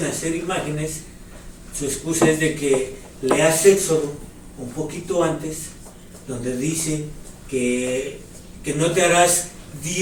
hacer imágenes, su excusa es de que leas Éxodo un poquito antes, donde dice que no te harás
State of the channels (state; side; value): identical; both; correlation 1.00